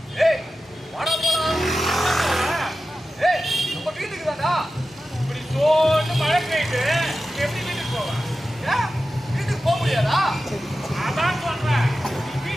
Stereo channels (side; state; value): both; normal; correlation 0.93